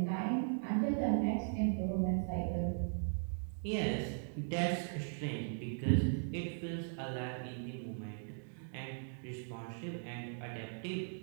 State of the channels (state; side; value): silent; left; digital silence